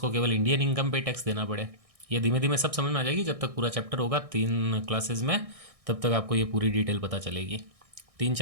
केवल इंडियन इनकम पे टैक्स देना पड़े। ये धीमे धीमे सब समझ में आ जाएगी जब तक पूरा चैप्टर होगा 3 क्लासेस में, तब तक आपको ये पूरी डिटेल पता चलेगी।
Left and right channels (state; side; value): late; left; 1.6 ms